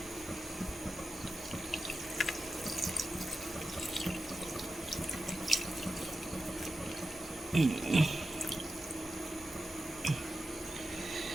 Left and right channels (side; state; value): both; normal; correlation 0.91